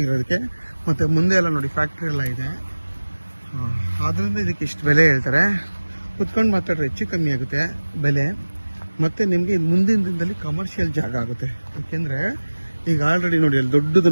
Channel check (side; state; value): both; inverted; correlation -1.00